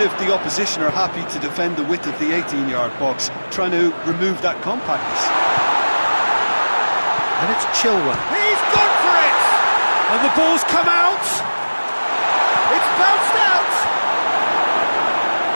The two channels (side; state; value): both; inverted; correlation -1.00